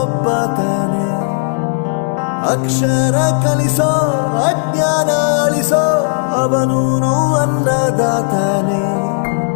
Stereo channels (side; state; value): right; silent; digital silence